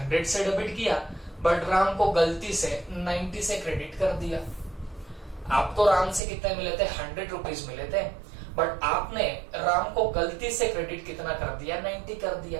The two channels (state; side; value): drops out; left; at 6.2 s